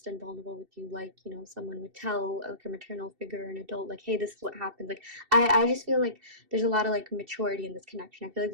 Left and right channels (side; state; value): left; late; 2.7 ms